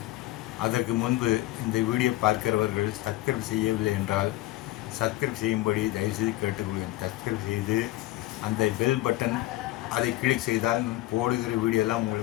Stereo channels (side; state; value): right; quieter; 17.1 dB